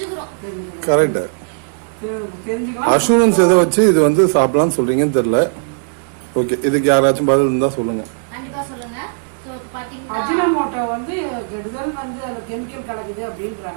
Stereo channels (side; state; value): left; silent; digital silence